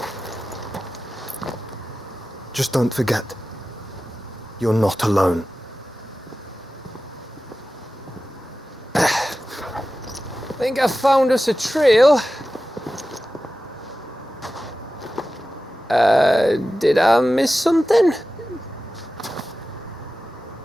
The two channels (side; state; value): both; normal; correlation 0.94